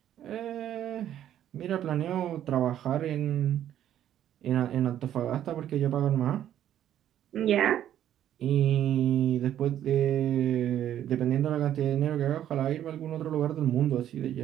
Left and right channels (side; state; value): left; quieter; 11.1 dB